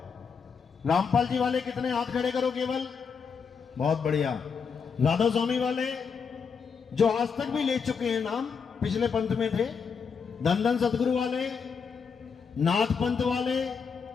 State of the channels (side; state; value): right; quieter; 6.0 dB